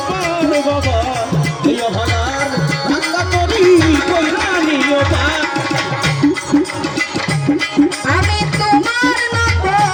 পার বাবা, এই অভাগার ভাঙ্গা তরি কইরা নিও পার। আমি তোমার নাম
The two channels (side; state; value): both; identical; correlation 1.00